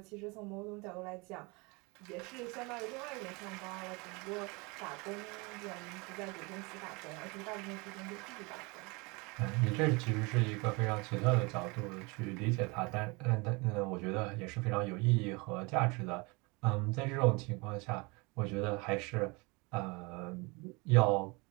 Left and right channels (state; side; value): quieter; left; 27.4 dB